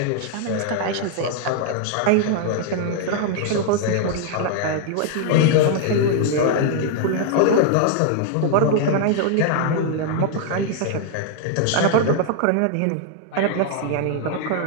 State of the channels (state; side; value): different; both; correlation 0.00